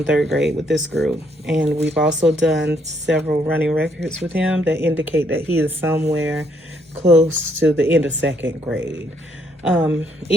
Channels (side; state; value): both; normal; correlation 0.71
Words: third grade with this group, and we've also done several running records with him that indicate that he is somewhere close to the end of second grade.